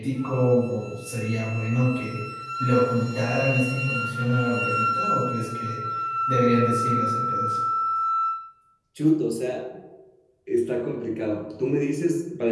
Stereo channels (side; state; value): both; identical; correlation 1.00